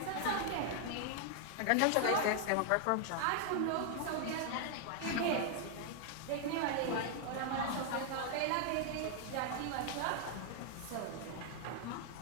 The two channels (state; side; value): different; both; correlation 0.00